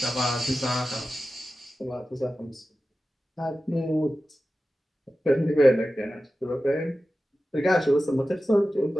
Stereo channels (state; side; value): normal; both; correlation 0.94